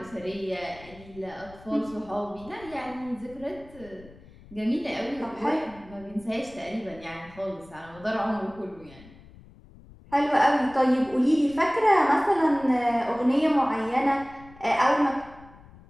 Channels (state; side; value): noise; left; rumble, 22 dB below the sound